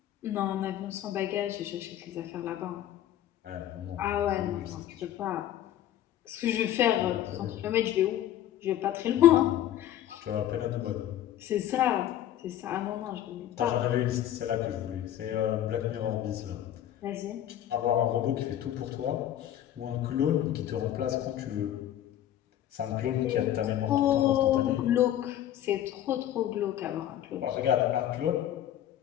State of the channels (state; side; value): quieter; right; 11.8 dB